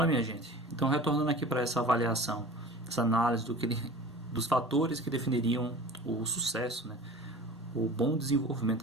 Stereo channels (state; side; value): normal; both; correlation 0.40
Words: minha gente. Então, retornando aqui para essa avaliação, essa análise dos fatores que definiriam o sucesso, né? O bom